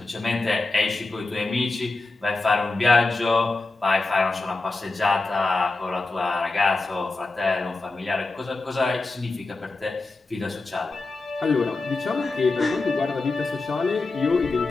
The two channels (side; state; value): right; quieter; 3.4 dB